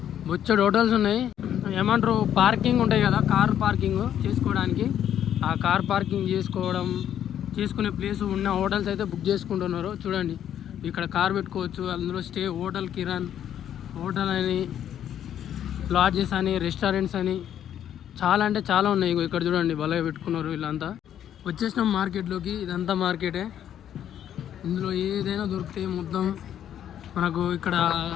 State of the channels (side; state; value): right; quieter; 10.2 dB